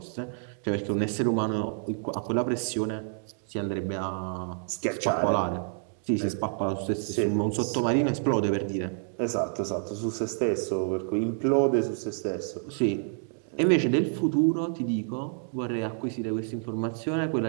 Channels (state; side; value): silent; left; 59 dB below the other